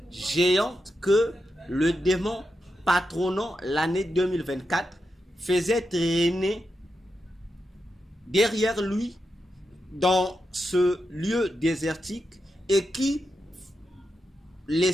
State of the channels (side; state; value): both; normal; correlation 0.87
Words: géante que le démon patronnant l'année 2024 faisait traîner derrière lui dans ce lieu désertique et qui